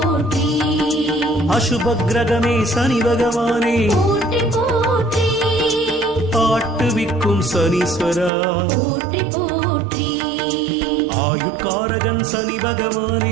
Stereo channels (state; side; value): drops out; left; at 8.3 s